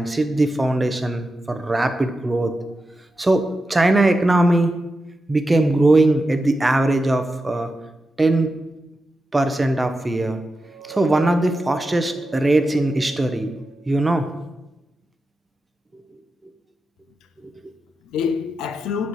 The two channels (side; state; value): both; normal; correlation 0.90